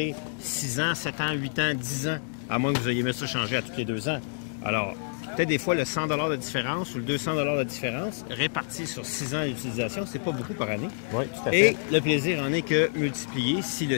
6 ans, 7 ans, 8 ans, 10 ans, à moins que vous ayez mis ça changer à tous les 2 ans. Alors, peut-être des fois le 100 $ de différence ou le 200 $ de différence, réparti sur 6 ans d'utilisation, c'est pas beaucoup par année. Oui, tout à fait. Et le plaisir en est que multiplié si le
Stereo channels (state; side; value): silent; right; digital silence